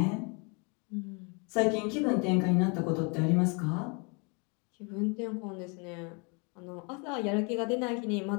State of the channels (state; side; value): quieter; right; 33.4 dB